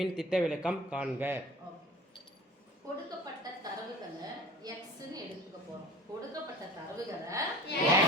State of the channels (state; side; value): normal; both; correlation 0.41